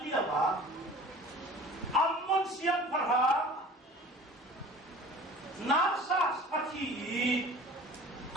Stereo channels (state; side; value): normal; both; correlation 0.44